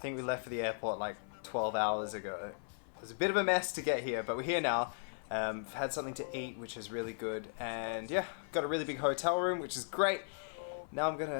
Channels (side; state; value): right; silent; 53 dB below the other